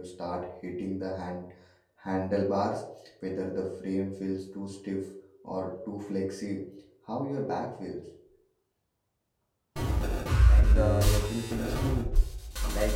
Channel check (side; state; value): both; identical; correlation 1.00